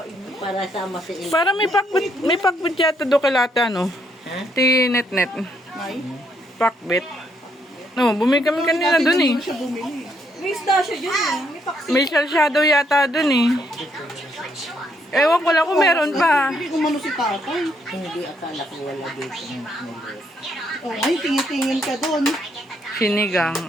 Para sama si Il. Para may pakbit yata do kalata, no? Tinet-net. May? Pakbit. No, bumili kami kanina dun eh. Siya bumili. May isda siya dyan eh. May paksi. May shadow yata dun eh. Ewan ko lang kung meron pa. Hindi kumano si tatay. Hindi, akala ko wala dito. Oh, ay, tingin-tingin ka doon. Sinigang.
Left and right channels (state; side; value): normal; both; correlation 0.73